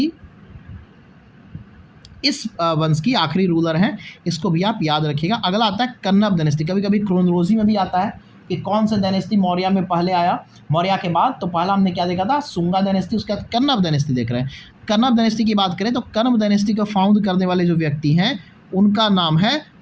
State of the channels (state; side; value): identical; both; correlation 1.00